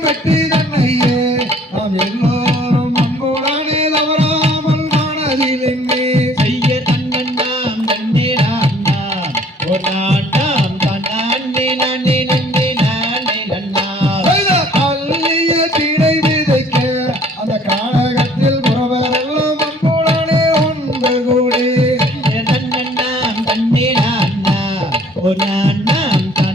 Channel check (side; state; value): both; normal; correlation 0.56